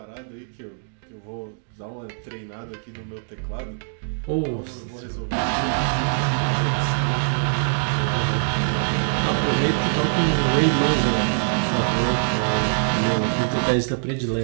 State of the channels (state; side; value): silent; left; digital silence